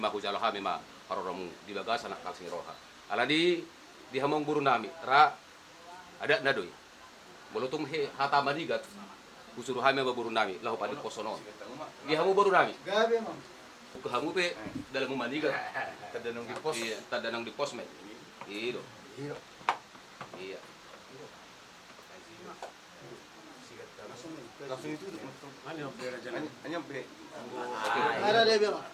mahujalo kami ma haroromu dibagasan nak kalsing roha ala di hamong buru nami ra ada nadoy molotong he hata madigat usuru kami baburu nami lahu padi kosonon di hamu buru nami Gabi ma'am. ke hamu pe dalam manigat tadanong di pos iya tadanang di posmed iyo Hiro. iya langsung itu Ano pera dyan? anyam be Ada Debbie ma'am.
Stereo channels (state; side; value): identical; both; correlation 1.00